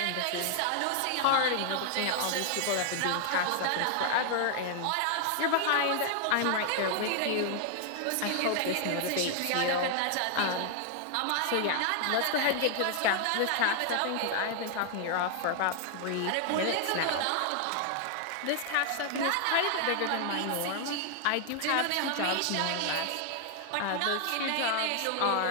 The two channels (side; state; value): both; different; correlation 0.00